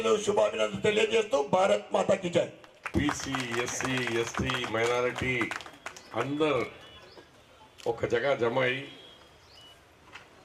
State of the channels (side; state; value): both; identical; correlation 1.00